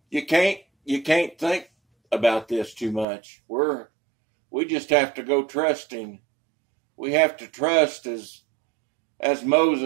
You can't think about this too much. We just have to go trusting. We have to trust as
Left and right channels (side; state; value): left; drops out; at 3.1 s